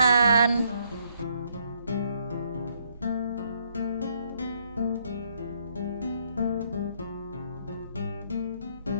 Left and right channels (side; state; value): both; inverted; correlation -0.71